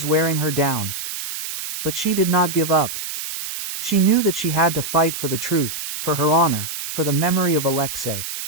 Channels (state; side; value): noise; right; hiss, 7 dB below the sound